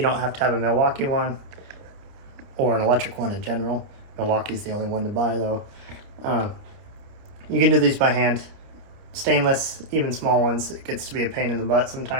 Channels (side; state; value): left; late; 30 ms